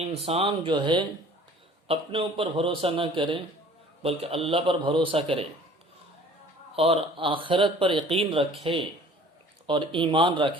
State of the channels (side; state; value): both; normal; correlation 0.50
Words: جو ہے اپنے اوپر بھروسہ نہ کرے بلکہ اللہ پر بھروسہ کرے اور آخرت پر یقین رکھے اور ایمان